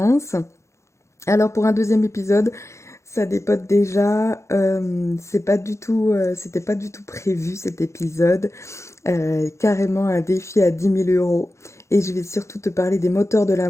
Alors pour un deuxième épisode, ça dépote déjà. C'était pas du tout prévu cet épisode. Carrément un défi à 10 000 euros. Et je vais surtout te parler des moteurs de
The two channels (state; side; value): late; right; 0.14 ms